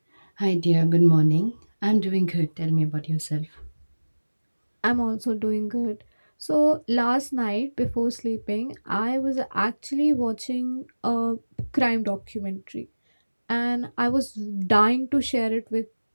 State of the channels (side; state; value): both; inverted; correlation -1.00